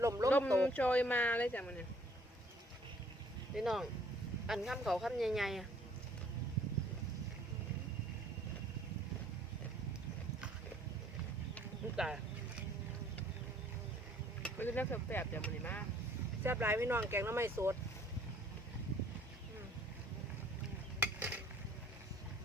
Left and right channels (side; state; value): both; normal; correlation 0.59